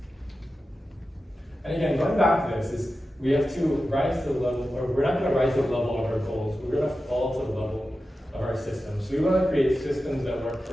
And again, going back to this is we have to rise to the level, or we're not going to rise to the level of our goals. We're going to fall to the level of our systems. So we want to create systems that work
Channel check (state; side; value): normal; both; correlation 0.92